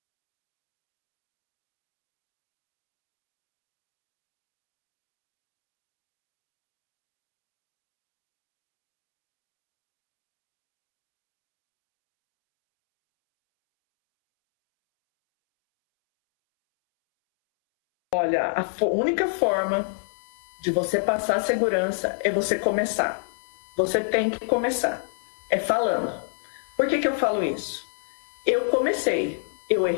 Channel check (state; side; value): silent; right; 62 dB below the other